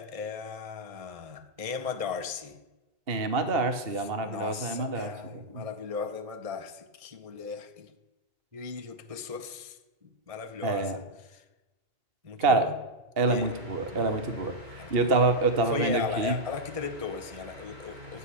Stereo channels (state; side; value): late; left; 1.7 ms